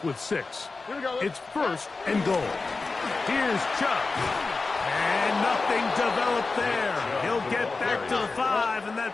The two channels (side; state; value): right; quieter; 3.9 dB